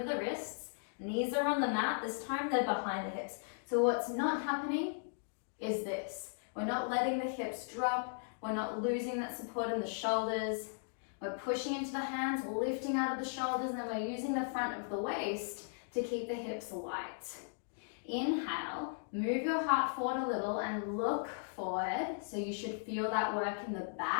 the wrists, knees are on the mat. This time they're behind the hips. So what's not happening is this. We're not letting the hips drop. We're not losing that support in the shoulders. We're pushing into the hands, lifting out of the shoulders, and then we're using the front of the waist to keep the hips light. Inhale, move your heart forward a little and look forward. So you should feel that work in the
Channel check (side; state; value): right; silent; digital silence